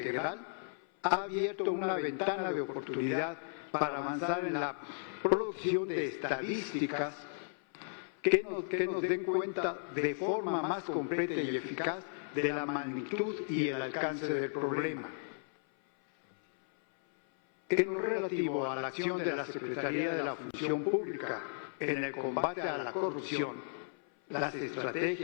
ha abierto una ventana de oportunidad para avanzar en la producción de estadísticas que nos den cuenta de forma más completa y eficaz de la magnitud y el alcance del problema. En lo relativo a la acción de la Secretaría de la Función Pública en el combate a la corrupción, las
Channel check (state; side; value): silent; right; 55 dB below the other